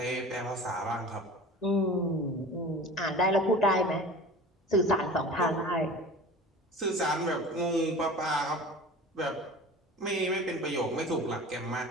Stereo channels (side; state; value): both; normal; correlation 0.38